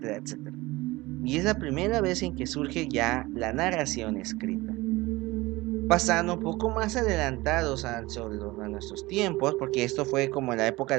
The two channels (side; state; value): left; quieter; 20.6 dB